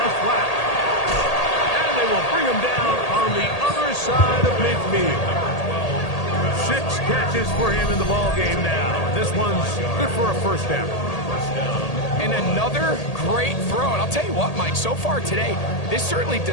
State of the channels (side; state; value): right; late; 1.8 ms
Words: flat. And they will bring him down on the other side of midfield. 6 catches for him in the ball game now. This one's good for a first down. And another great throw. And I'll tell you what, Mike, so far today, this certainly